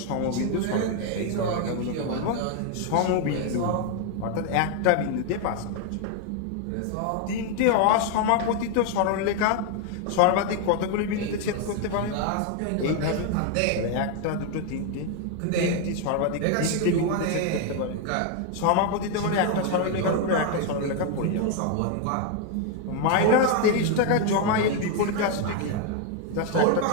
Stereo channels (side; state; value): both; different; correlation 0.01